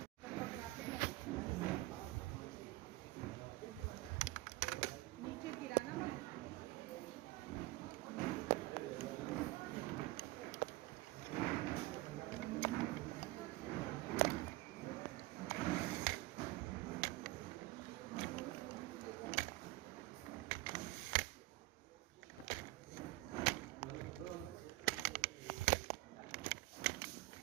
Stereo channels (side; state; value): left; quieter; 19.6 dB